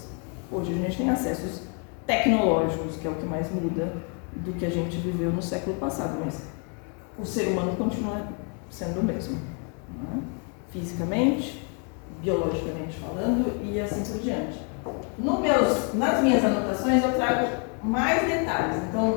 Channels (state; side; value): quieter; right; 39.8 dB